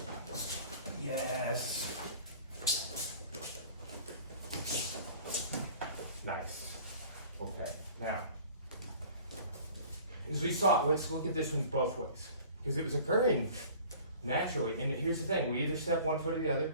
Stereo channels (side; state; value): both; inverted; correlation -0.47